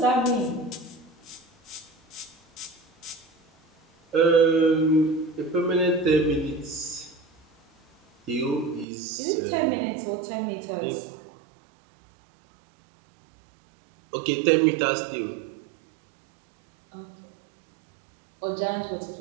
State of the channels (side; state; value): left; drops out; at 8.8 s